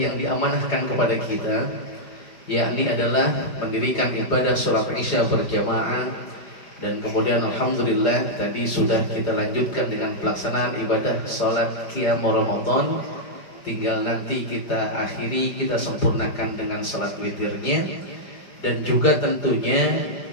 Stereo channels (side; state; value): right; late; 5.0 ms